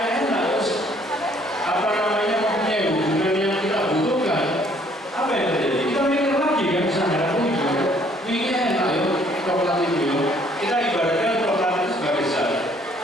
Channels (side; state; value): both; normal; correlation 0.62